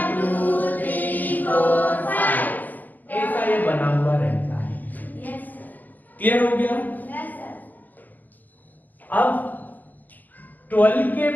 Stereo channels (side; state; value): right; late; 0.084 ms